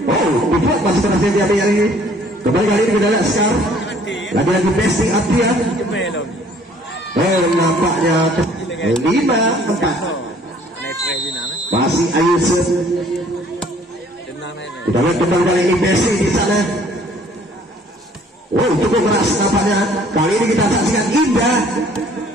Oh, dibuat masih berhasil diambil ini. Kembali kali ini kita lihat Sekar lagi-lagi Besti Abia. Oh, nampaknya 5-4 masih Ayu. Kita lihat kembali kali ini Besti di sana. Oh, cukup keras nampaknya. Kali ini kita saksikan Indah.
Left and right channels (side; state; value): both; normal; correlation 0.57